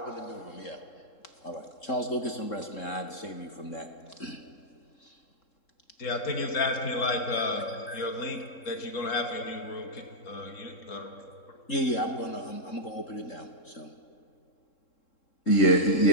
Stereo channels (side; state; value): right; late; 3.7 ms